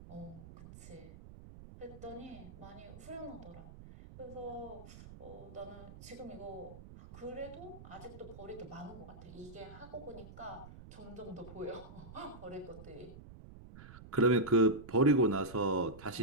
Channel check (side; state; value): right; noise; rumble, 15 dB below the sound